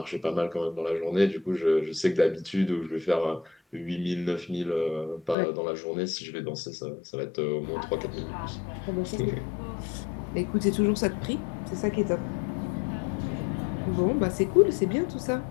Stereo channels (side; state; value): right; drops out; at 5.4 s